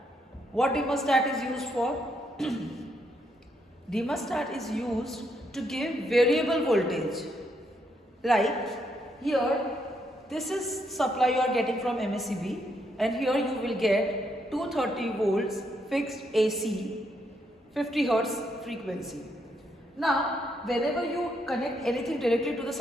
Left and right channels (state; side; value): normal; both; correlation 0.76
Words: What dimmerstat is used for? Dimmerstat is used to give variable voltage. Like here, this is supply you are getting from MSCB, and here you will get 230 volts fixed AC, 50 hertz frequency. Now, whenever you connect anything directly to the